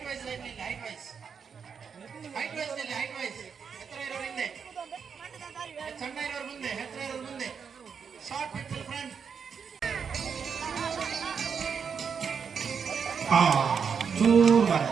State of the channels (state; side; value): quieter; left; 6.5 dB